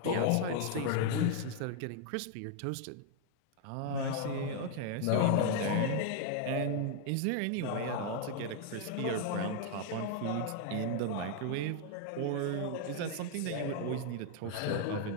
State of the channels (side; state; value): both; different; correlation 0.00